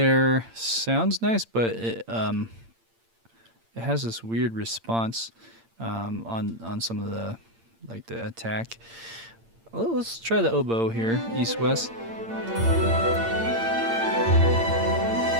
sounds nice, but it has this weird response on some of the the attack. Well, let's try the oboe here, east west.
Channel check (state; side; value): late; left; 8.8 ms